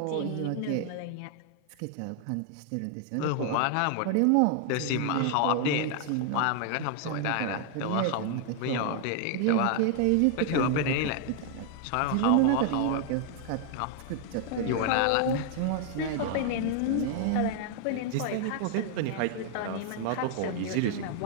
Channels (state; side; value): different; both; correlation 0.00